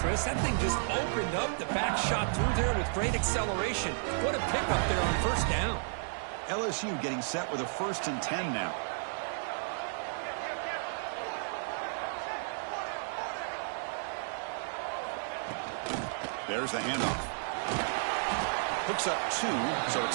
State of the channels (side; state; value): left; silent; digital silence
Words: That thing just opened up. The back shot through there with great acceleration. What a pickup there on first down. LSU getting set with a 1st and 10 now. There's the handoff. Hooks up 2, so